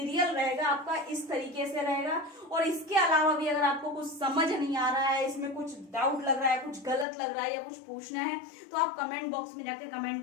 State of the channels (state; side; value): drops out; right; at 7.1 s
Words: रहेगा आपका इस तरीके से रहेगा। और इसके अलावा भी अगर आपको कुछ समझ नहीं आ रहा है, इसमें कुछ डाउट लग रहा है, कुछ गलत लग रहा है, या कुछ पूछना है, तो आप कमेंट बॉक्स में जाकर